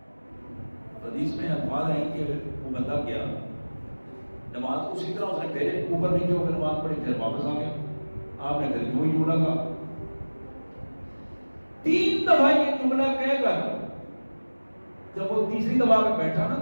حدیث میں الفاظ ہیں کہ وہ بندہ گیا، نماز اسی طرح اس نے پہلے اوپر نیچے ہو کر نماز پڑھی، پھر واپس آ گیا، آپ نے پھر وہی جملہ کہا، 3 دفعہ یہ جملہ کہہ کر جب وہ تیسری دفعہ پہ بیٹھا نا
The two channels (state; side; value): inverted; both; correlation -1.00